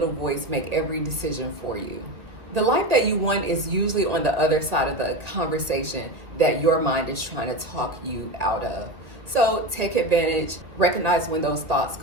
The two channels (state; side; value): late; left; 2.0 ms